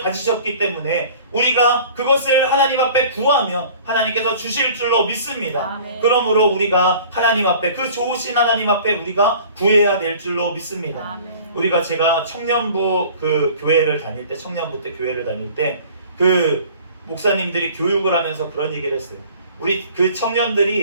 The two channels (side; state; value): both; inverted; correlation -0.47